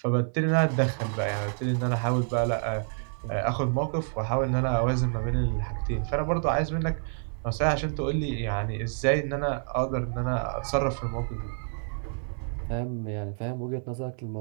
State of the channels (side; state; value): left; silent; 59 dB below the other